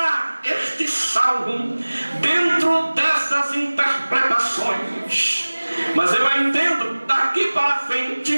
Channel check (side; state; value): both; inverted; correlation -1.00